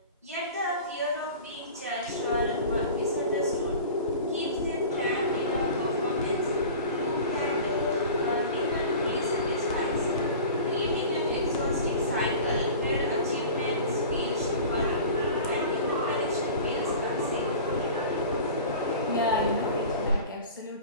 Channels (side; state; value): both; inverted; correlation -0.38